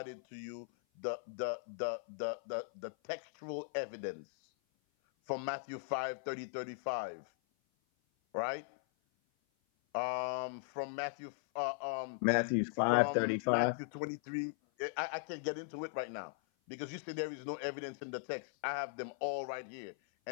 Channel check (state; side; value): silent; right; 52 dB below the other